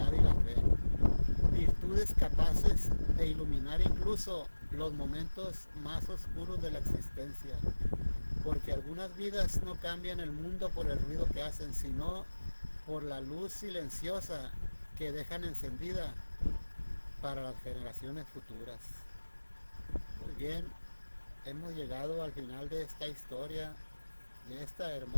y la fe, virtudes capaces de iluminar incluso los momentos más oscuros de la existencia, porque algunas vidas no cambian el mundo por el ruido que hacen, sino por la luz silenciosa que dejan encendida para las generaciones futuras. Muy bien, hemos llegado al final de esta historia, de esta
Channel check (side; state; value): both; inverted; correlation -1.00